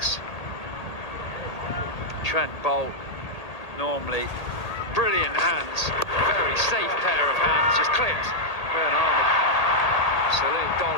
Trent Boult, normally brilliant hands, very safe pair of hands, just clipped. Rayan Ahmed, absolute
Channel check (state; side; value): late; right; 1.8 ms